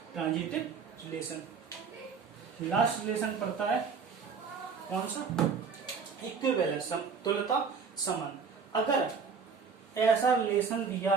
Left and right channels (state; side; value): quieter; left; 5.6 dB